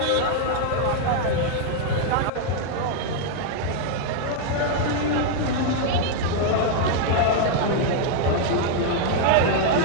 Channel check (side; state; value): both; different; correlation 0.00